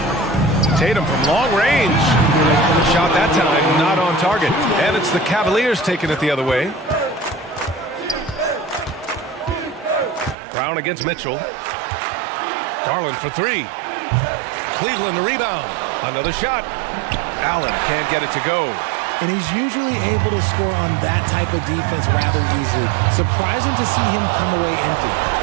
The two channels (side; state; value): left; drops out; at 10.4 s